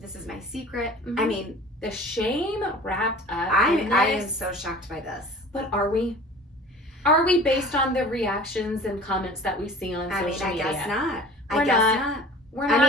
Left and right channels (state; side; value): normal; both; correlation 0.43